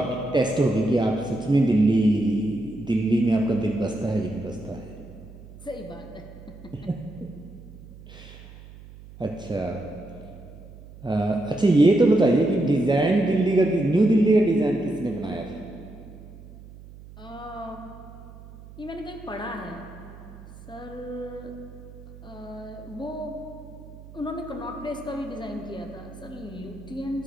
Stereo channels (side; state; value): right; noise; hum, 18 dB below the sound